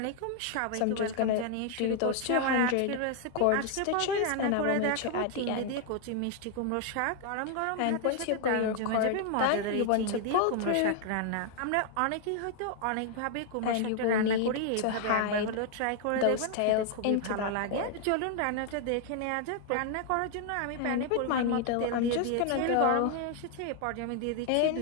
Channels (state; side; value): different; both; correlation 0.00